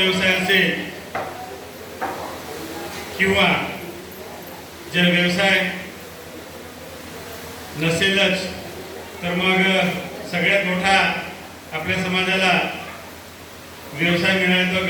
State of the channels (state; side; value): identical; both; correlation 1.00